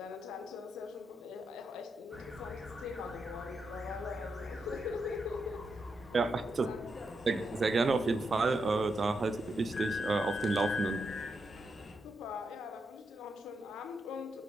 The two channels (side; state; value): both; normal; correlation 0.83